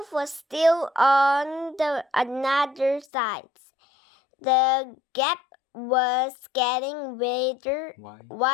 was still on the another side. The gap was getting wider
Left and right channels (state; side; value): drops out; right; at 3.1 s